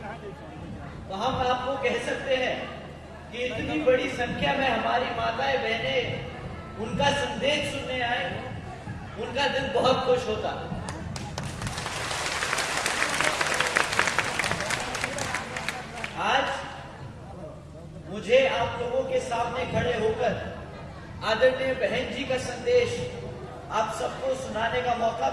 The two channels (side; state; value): both; identical; correlation 1.00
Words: तो हम आपको कह सकते हैं कि इतनी बड़ी संख्या में हमारी माताएं बहनें उनका संदेश सुनने आए, उनका दिल बहुत खुश होता। आज मुझे आप लोगों के सामने खड़े होकर आदरणीय बहन जी का संदेश आप सबको सुनाने का मौका